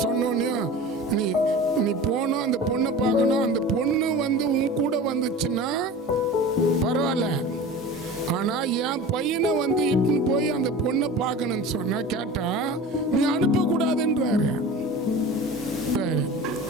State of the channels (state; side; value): normal; both; correlation 0.36